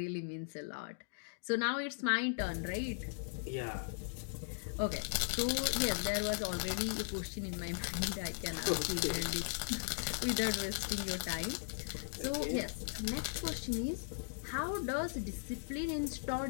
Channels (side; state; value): right; silent; digital silence